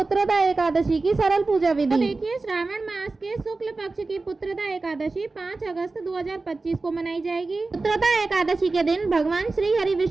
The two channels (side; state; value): left; quieter; 3.6 dB